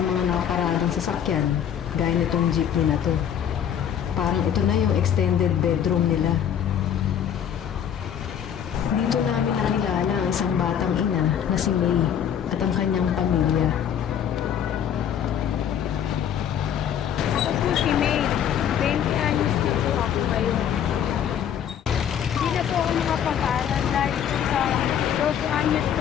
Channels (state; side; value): quieter; right; 9.1 dB